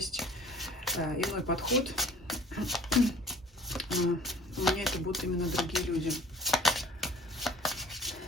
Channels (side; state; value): both; normal; correlation 0.50